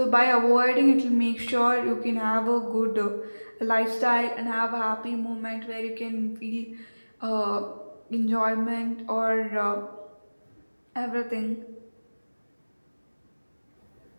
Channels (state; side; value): inverted; both; correlation -1.00